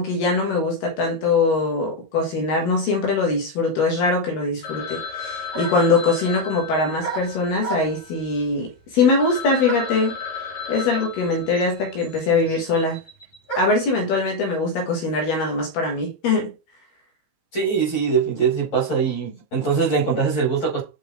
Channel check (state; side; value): late; right; 13 ms